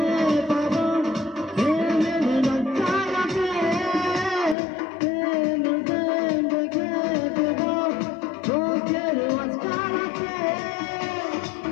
পাবো প্রেমের ফুলদানিতে প্রেম প্রেম রেখে দেব চোখের মাঝখানাতে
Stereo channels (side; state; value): right; drops out; at 4.5 s